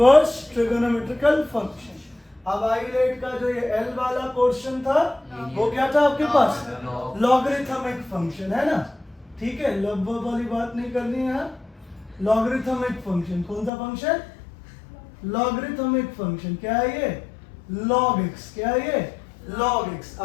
trigonometrical function. अब आइलेट का जो ये एल वाला पोर्शन था वो क्या था आपके पास? लॉगरिथमिक फंक्शन, है ना। ठीक है, लगभग वाली बात नहीं करनी है। लॉगरिथमिक फंक्शन कौन सा फंक्शन? Logarithmic function. क्या है ये? Log x. क्या है ये? Log x.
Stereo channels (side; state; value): right; drops out; at 13.7 s